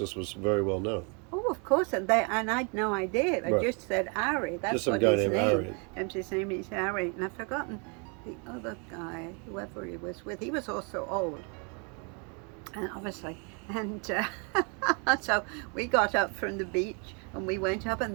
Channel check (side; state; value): left; quieter; 35.7 dB